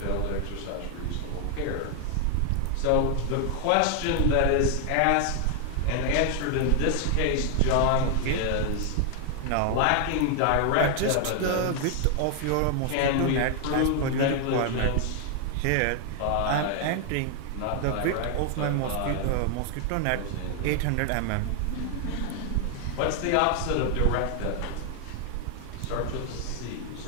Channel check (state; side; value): different; both; correlation 0.00